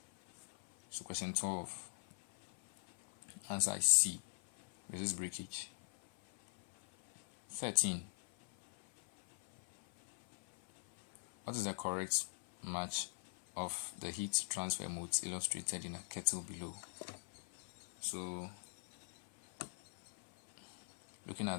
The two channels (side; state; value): right; silent; 50 dB below the other